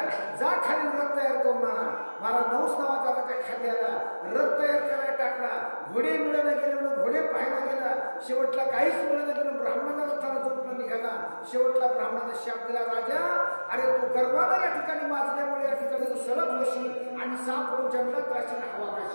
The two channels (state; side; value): inverted; both; correlation -1.00